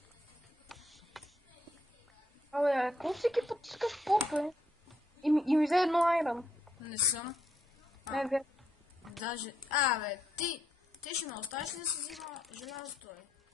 Абе, какво всеки път искаш поп, бе? И ми взе едно айрон. Не съм. Не, бе. Даже... бе, ти ще ме оставиш ли да си взима желязото, бе?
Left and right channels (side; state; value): both; normal; correlation 0.76